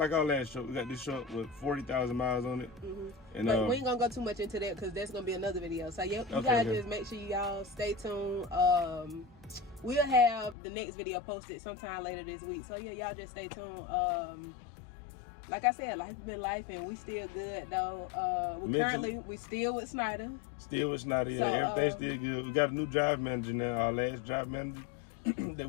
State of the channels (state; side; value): drops out; right; at 10.6 s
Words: our last truck. We got this truck with 40,000 miles on it. And but we ain't gonna go too much into that because that's gonna be another video. So you guys just make sure y'all stay tuned. We'll have the next video posted sometime later this week. So yeah, y'all just stay tuned. Like I said, life been life, and we still good though. We still with Snyder. Still with Snyder, yeah. So, everything's still good. We got a new drive manager now. Our last drive manager that